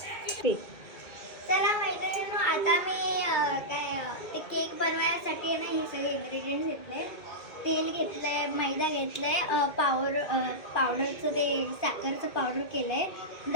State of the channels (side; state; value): right; late; 2.4 ms